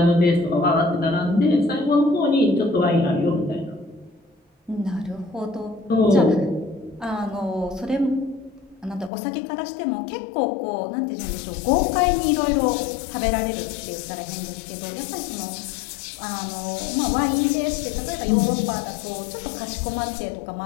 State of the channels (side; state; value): right; drops out; at 9.1 s